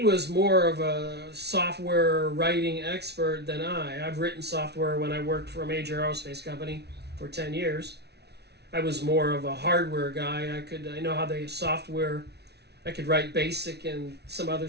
more of a software writing expert than I. I've written software when I worked for a major aerospace company for 10 years. I was more of a hardware guy. I know how the software I could write BASIC and some other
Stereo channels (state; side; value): late; left; 0.49 ms